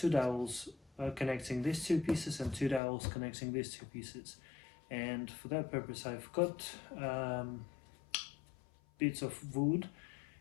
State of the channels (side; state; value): right; drops out; at 2.8 s